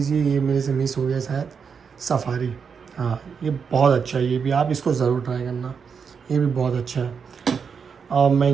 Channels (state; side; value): quieter; left; 6.2 dB